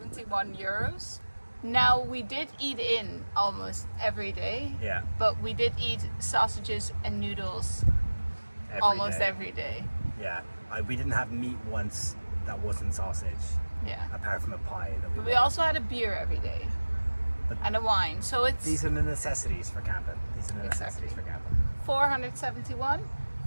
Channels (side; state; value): both; inverted; correlation -1.00